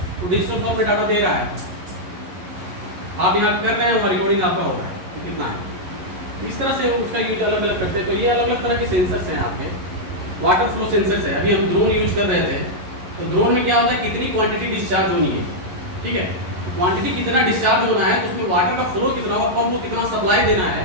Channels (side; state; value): left; late; 11 ms